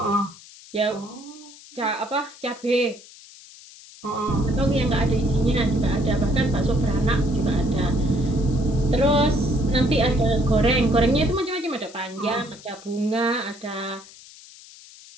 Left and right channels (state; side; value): noise; left; hiss, 20 dB below the sound